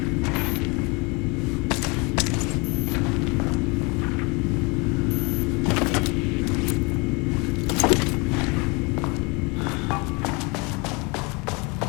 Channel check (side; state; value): right; quieter; 28.7 dB